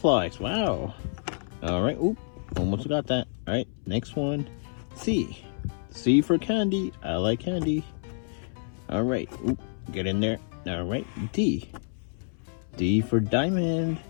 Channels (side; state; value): right; silent; 59 dB below the other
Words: Wow. All right. Almost got that. All right. Next one. C for candy. I like candy. All right. Get in there. All right. D for diamond.